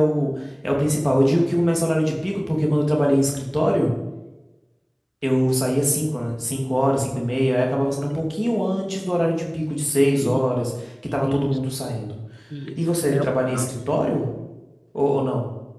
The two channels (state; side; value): identical; both; correlation 1.00